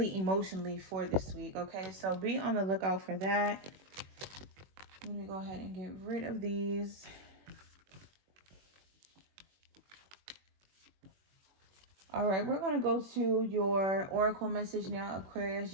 emotionally, for this week. Okay, so be on the lookout for that. Let me go ahead and get rid of these. All right, we're going to go to your oracle message now, Aquarius.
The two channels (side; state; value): left; late; 21 ms